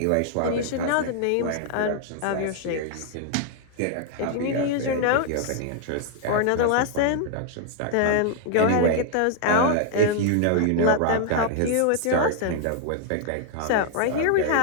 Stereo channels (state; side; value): different; both; correlation 0.00